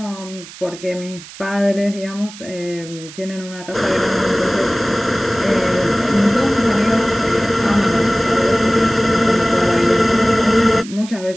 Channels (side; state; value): right; noise; hiss, 16 dB below the sound